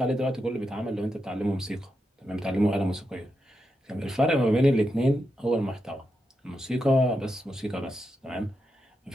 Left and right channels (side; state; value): both; normal; correlation 0.86